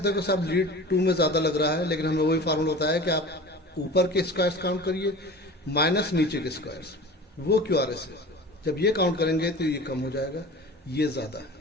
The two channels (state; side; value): normal; both; correlation 0.37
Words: हो कि साहब लीड 2 में ज़्यादा लग रहा है, लेकिन हमें वही फार्मूला होता है कि आप ऊपर के स्क्वायर्स काउंट करिए माइनस नीचे के स्क्वायर्स, वो QRS है। जब ये काउंट करेंगे तो ये कम हो जाएगा, ये ज़्यादा है।